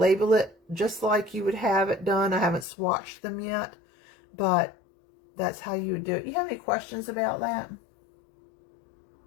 just like you would have it done. I haven't swatched them yet, but that's how you would do it. You have any questions about that?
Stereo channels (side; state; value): right; drops out; at 2.7 s